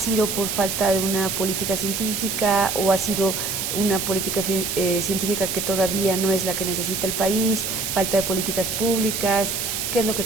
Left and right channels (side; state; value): right; noise; hiss, 2 dB below the sound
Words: por falta de una política científica o ha sido una política científica que todavía no es la que necesita el país, falta de políticas públicas? ¿Qué es lo que